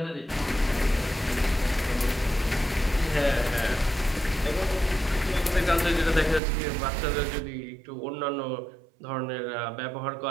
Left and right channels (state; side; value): drops out; left; at 6.4 s